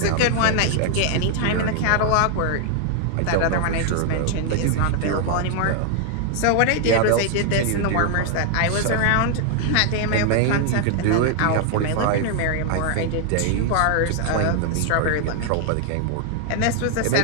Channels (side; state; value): both; different; correlation 0.00